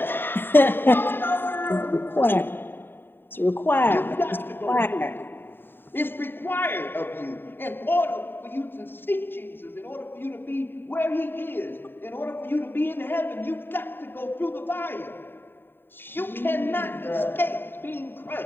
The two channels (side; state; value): right; late; 0.099 ms